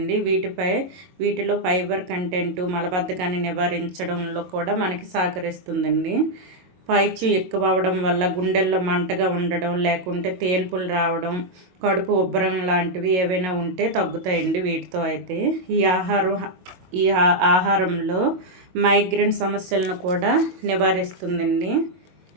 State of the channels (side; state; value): left; late; 22 ms